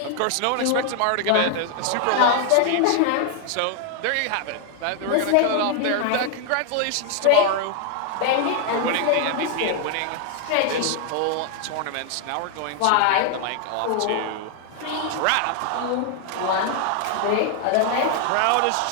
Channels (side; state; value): both; different; correlation 0.00